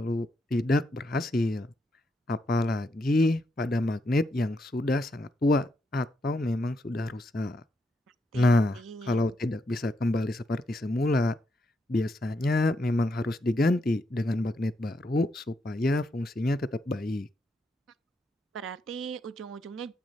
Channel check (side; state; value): both; normal; correlation 0.79